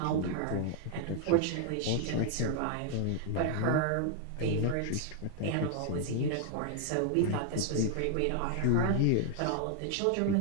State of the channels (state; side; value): different; both; correlation 0.00